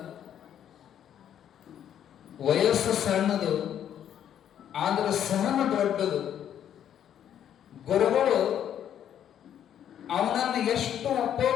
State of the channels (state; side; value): quieter; right; 9.9 dB